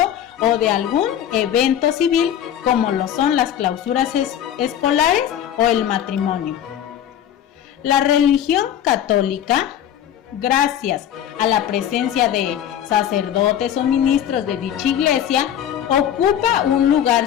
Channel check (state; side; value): quieter; right; 10.2 dB